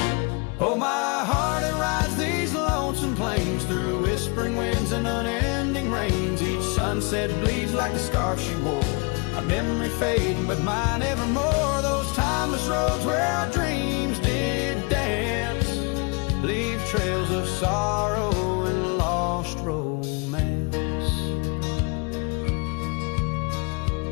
sunset bleeds like the scarf she wore. A memory fading, but mine evermore. Those timeless roads where our dreams did dance leave trails of sorrow and lost romance.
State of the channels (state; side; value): quieter; right; 31.3 dB